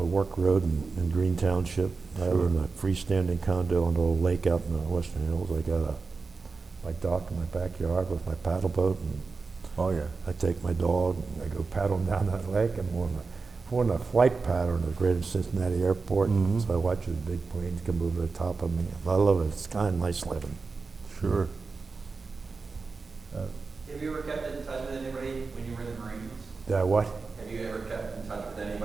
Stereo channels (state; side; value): quieter; left; 4.4 dB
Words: Work Road in Green Township. I live in a freestanding condo on the old lake out in the Western Hills. I got my dock in my backyard with my paddle boat, and Oh yeah. I take my dog and I go paddling down that lake, and we're on a flight pattern at Greater Cincinnati Airport, so I watch the big planes come over the top of me. I love it. It's kind of nice living. Sure. Have you ever kept in touch with What? Have you ever kept in touch with